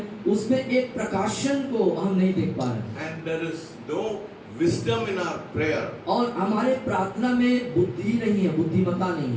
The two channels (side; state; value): both; identical; correlation 1.00